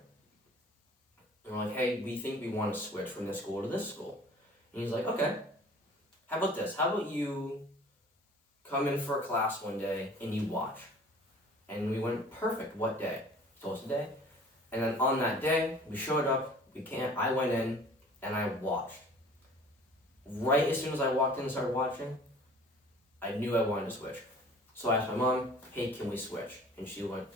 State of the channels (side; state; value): both; normal; correlation 0.48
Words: And we're like, hey, we think we want to switch from this school to this school. And he's like, okay, how about this? How about you come in for a class one day and you watch? And we went, perfect, what day? He told us a day. And then on that day, we showed up, I went in and I watched. Right as soon as I walked in and started watching, I knew I wanted to switch. So I asked my mom, hey, can we switch? And she went,